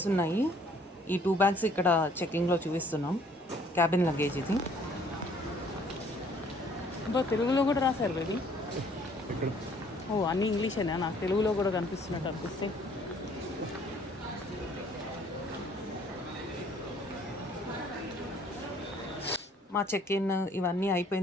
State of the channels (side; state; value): both; normal; correlation 0.60